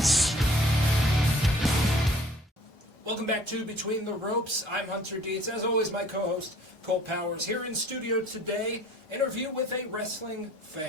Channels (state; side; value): normal; both; correlation 0.54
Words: Welcome back to Between the Ropes. I'm Hunter Dietz. As always, my co-host, Colt Powers, here in studio today, interview with a wrestling